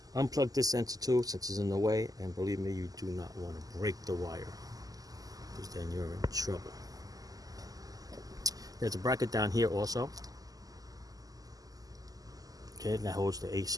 Unplug this sensor too, since it's in the way, and believe me, you do not want to break the wire, because then you're in trouble. There's a bracket down here also. Okay, that holds the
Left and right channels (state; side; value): late; left; 0.17 ms